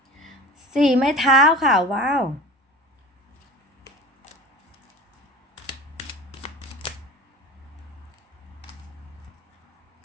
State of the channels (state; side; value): normal; both; correlation 0.35